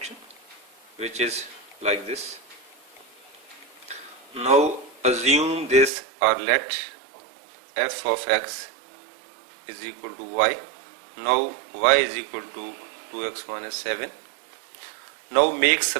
which is like this. Now assume this, or let f of x is equal to y. Now y is equal to 2x minus 7. Now make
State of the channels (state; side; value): drops out; left; at 5.9 s